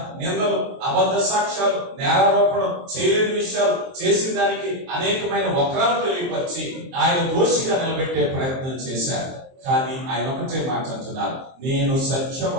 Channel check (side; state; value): left; late; 23 ms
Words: నిందలు, అబద్ధ సాక్ష్యాలు, నేరారోపణ, చేయలేని విషయాలు చేసిన దానికి అనేకమైన వక్రాలు తెలియపరిచి ఆయన దోషిగా నిలబెట్టే ప్రయత్నం చేశారు. కానీ ఆయన ఒకటే మాట అంటున్నారు, నేను